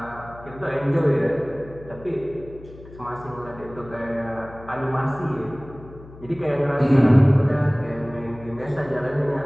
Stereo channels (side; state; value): left; noise; hum, 19 dB below the sound